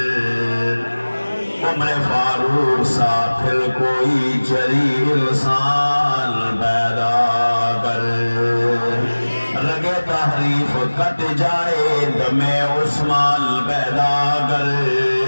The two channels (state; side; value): inverted; both; correlation -1.00